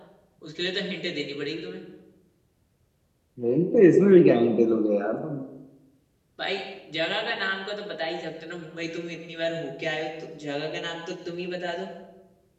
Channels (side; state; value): both; identical; correlation 1.00